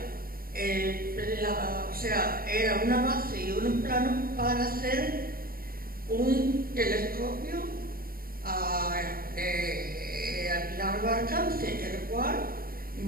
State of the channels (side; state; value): left; late; 0.43 ms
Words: era una base y unos planos para hacer un telescopio de largo alcance, el cual